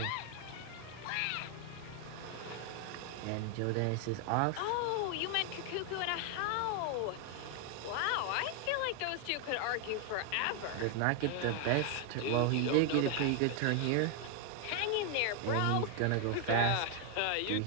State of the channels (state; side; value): different; both; correlation 0.01